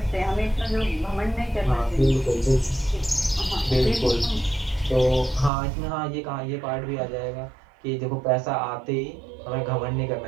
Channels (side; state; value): left; drops out; at 5.5 s